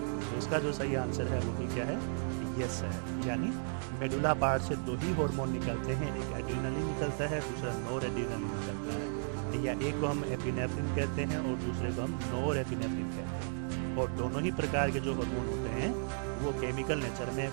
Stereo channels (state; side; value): silent; left; 55 dB below the other